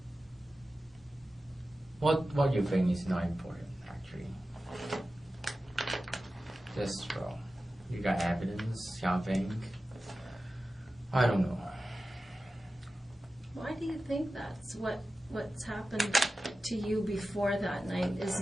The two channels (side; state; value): both; normal; correlation 0.94